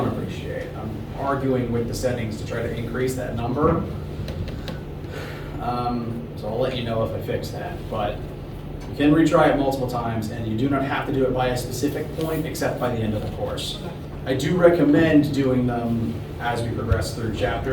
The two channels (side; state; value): both; identical; correlation 1.00